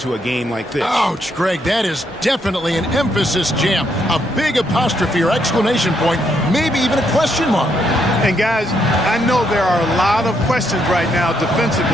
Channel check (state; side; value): normal; both; correlation 0.75